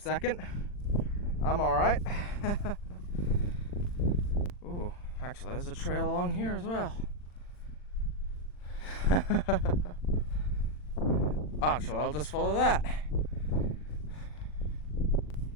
I'm alright. Ooh, actually there's a trail along here as well. Actually, I'll just follow that.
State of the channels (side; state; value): right; late; 40 ms